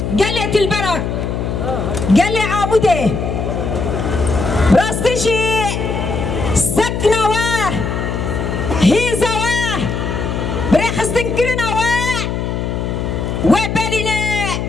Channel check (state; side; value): noise; left; hum, 2 dB below the sound